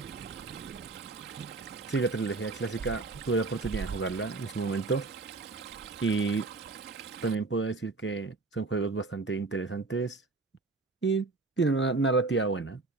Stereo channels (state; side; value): quieter; left; 3.7 dB